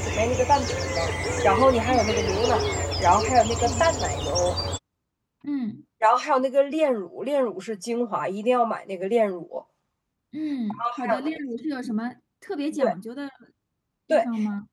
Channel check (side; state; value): both; identical; correlation 1.00